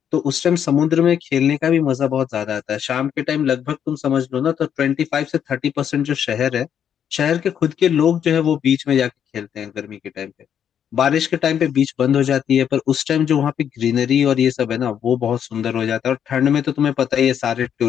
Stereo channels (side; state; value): right; quieter; 8.8 dB